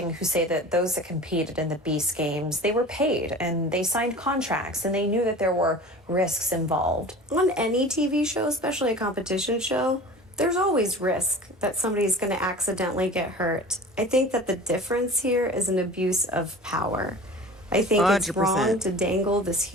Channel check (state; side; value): normal; both; correlation 0.39